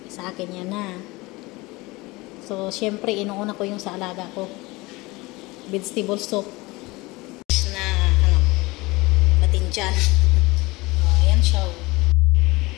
Sa akin yan na. So, syempre, inuuna ko yung sa alaga ko. Vegetable soup. Na, batinjan. Ayan siya.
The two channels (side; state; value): right; quieter; 22.5 dB